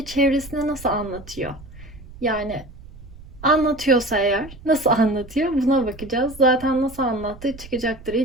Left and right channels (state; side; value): noise; right; rumble, 18 dB below the sound